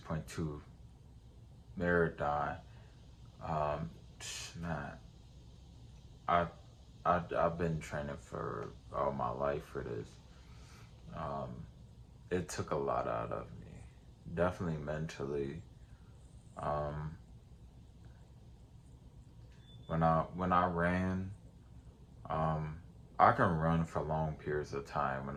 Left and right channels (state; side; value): identical; both; correlation 1.00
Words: marathon, um, man, I, I've been training for all my life for this. Um, it took a lot out of me, definitely mentally. Um, when I ran, um, I can run for long periods of time.